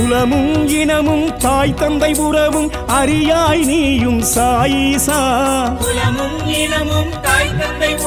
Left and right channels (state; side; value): identical; both; correlation 1.00